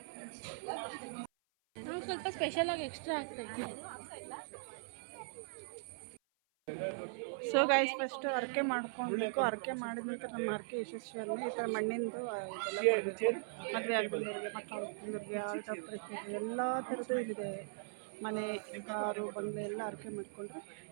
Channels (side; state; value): left; silent; 51 dB below the other